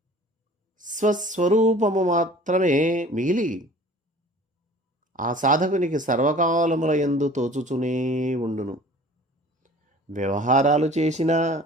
స్వస్వరూపము మాత్రమే మిగిలి ఆ సాధకునికి సర్వకాలముల యందు తోచుచునే ఉండును. వ్యవహారాలు చేసినా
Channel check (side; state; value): both; normal; correlation 0.47